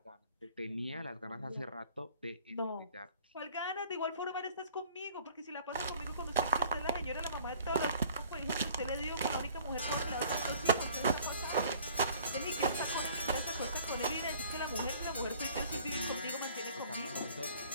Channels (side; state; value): both; inverted; correlation -0.52